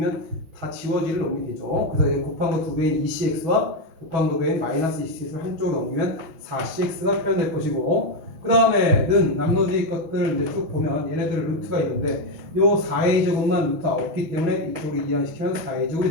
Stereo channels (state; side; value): late; left; 6.1 ms